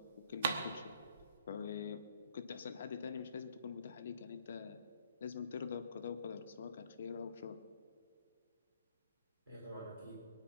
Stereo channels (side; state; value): both; inverted; correlation -0.64